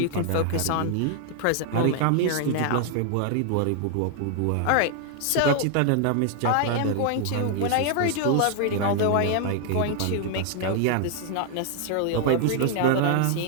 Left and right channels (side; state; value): both; different; correlation 0.00